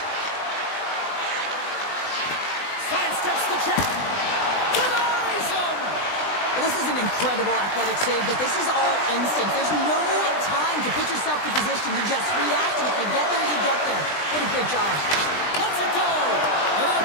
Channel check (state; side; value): late; right; 20 ms